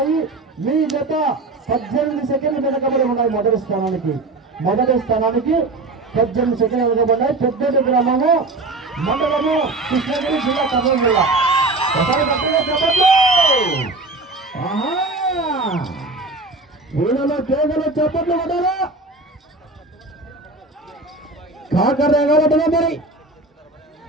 మీ జత 18 సెకండ్లు వెనకబడి ఉన్నాయి. మొదటి స్థానానికి 18 సెకండ్లు వెనకబడ్డాయి. పెద్దటి గ్రామము, మండలము, కృష్ణగిరి జిల్లా, కర్నూలు జిల్లా. ఒకసారి గట్టిగా చెప్పండి. వీళ్ళలో కేవలం చెప్పట్లు పడ్డారా, కాకర్రేగా పడ్డా మరి.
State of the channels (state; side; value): quieter; left; 3.2 dB